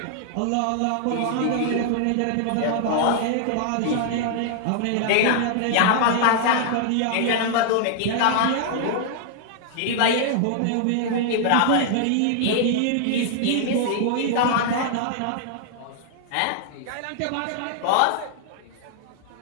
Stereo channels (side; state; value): both; different; correlation -0.01